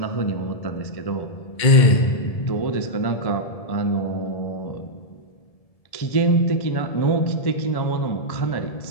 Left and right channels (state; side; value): late; right; 1.7 ms